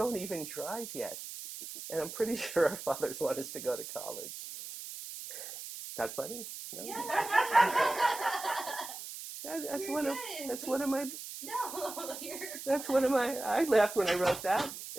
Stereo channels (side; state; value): right; noise; hiss, 10 dB below the sound